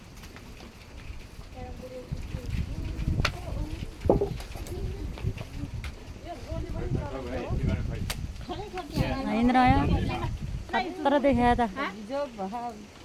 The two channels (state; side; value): identical; both; correlation 1.00